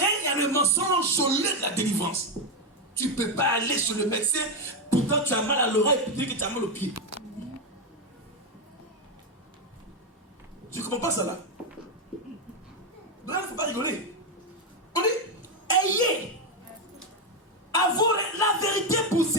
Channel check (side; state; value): both; normal; correlation 0.07